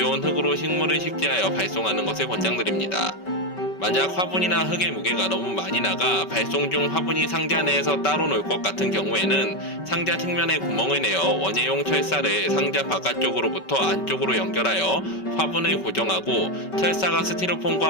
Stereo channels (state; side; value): late; right; 5.2 ms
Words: 흙으로 식물을 식재하여 발송하는 것을 권장드립니다. 만약 화분이나 흙의 무게가 너무 많이 나가 발송 중 화분이 상자 내에서 따로 놀 것 같은 경우에는 상자 측면에 구멍을 내어 원예용 철사를 상자 바깥쪽으로부터 안쪽으로 연결하여 화분을 고정하고 철사가